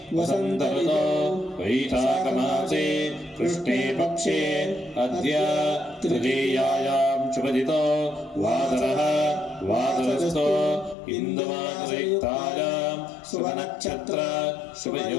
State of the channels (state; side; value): drops out; right; at 11.0 s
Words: वसन्त ऋतौ वैशाखमासे कृष्णे पक्षे अद्य तृतीयायां शुभदितो वासरः वासरस्थो इन्दुमासयुक्तायां शुभनक्षत्र